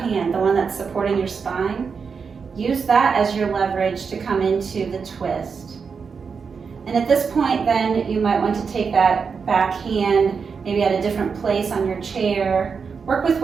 the one that's supporting your spine, use that as your leverage to come into the twist. And at this point then, you might want to take that back hand, maybe at a different place on your chair. Work with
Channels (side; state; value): left; quieter; 5.7 dB